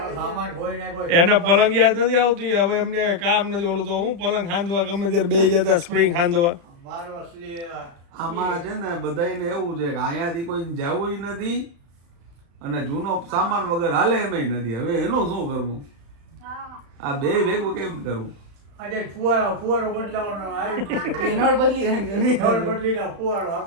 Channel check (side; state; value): left; late; 35 ms